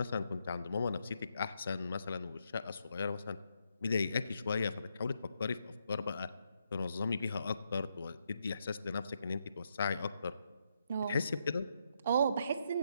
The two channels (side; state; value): both; inverted; correlation -0.79